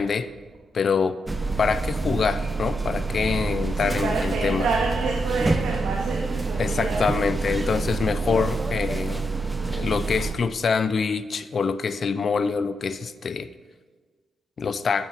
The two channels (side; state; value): both; normal; correlation 0.83